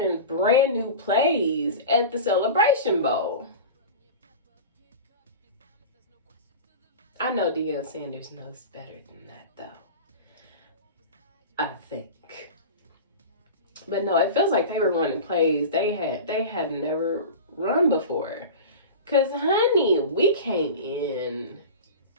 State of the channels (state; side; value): inverted; both; correlation -0.31